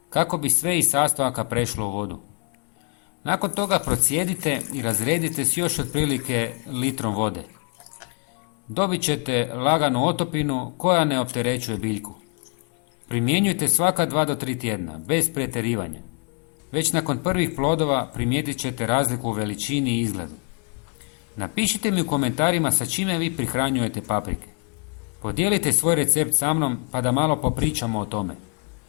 kako bi sve iz sastojaka prešlo u vodu. Nakon toga procijedite i razredite s još otprilike litrom vode. Dobit ćete laganu otopinu koja ne opterećuje biljku. Primjenjujte svaka 2 do 3 tjedna, bez pretjerivanja. Već nakon prvih plodova primijetit ćete razliku u veličini i izgledu. Napišite mi u komentarima sa čime vi prihranjujete paprike. Podijelite svoj recept sa mnom pa da malo popričamo o tome.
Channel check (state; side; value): quieter; right; 40.0 dB